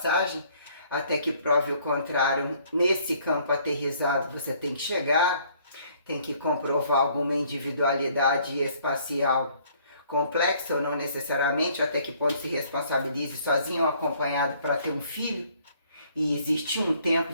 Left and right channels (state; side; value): inverted; both; correlation -0.61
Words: até que prove o contrário. Nesse campo aterrizado você tem que chegar, tem que comprovar alguma individualidade espacial complexa ou não necessariamente, até que ponto se responsabilize sozinho ou acompanhado para ter um filho. E existe um tempo